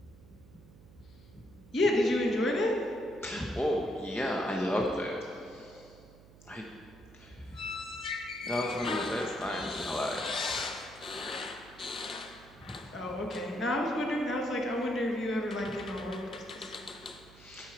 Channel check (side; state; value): right; noise; hum, 21 dB below the sound